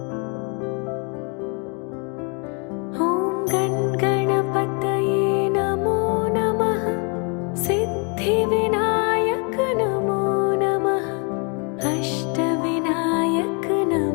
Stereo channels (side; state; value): right; quieter; 35.5 dB